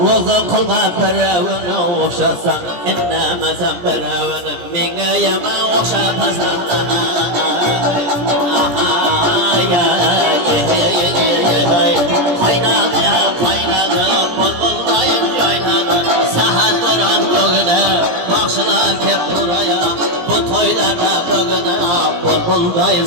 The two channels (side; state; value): left; late; 17 ms